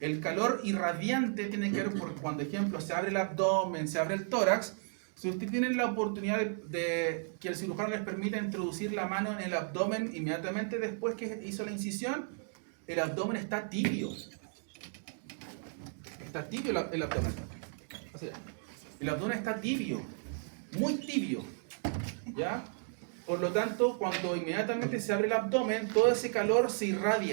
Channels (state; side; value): silent; left; 55 dB below the other